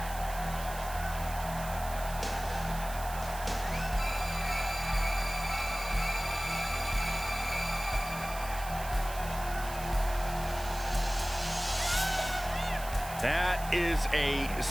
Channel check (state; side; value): noise; right; hiss, 12 dB below the sound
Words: That is a